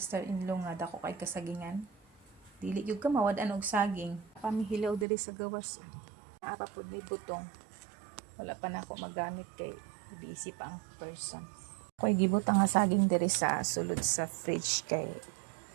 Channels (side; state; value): left; drops out; at 5.1 s